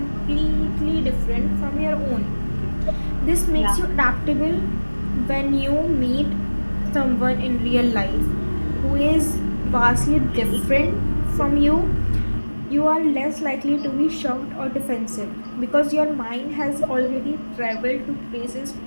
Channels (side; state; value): both; inverted; correlation -1.00